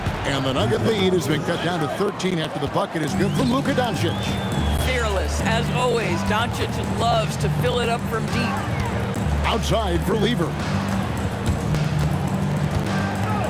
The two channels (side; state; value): both; identical; correlation 1.00